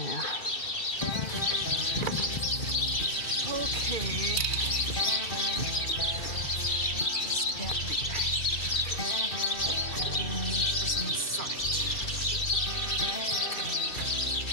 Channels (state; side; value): late; right; 2.6 ms